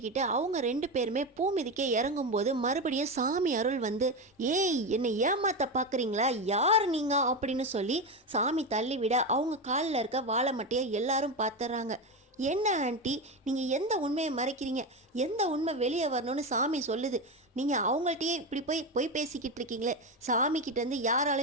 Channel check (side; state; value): both; normal; correlation 0.16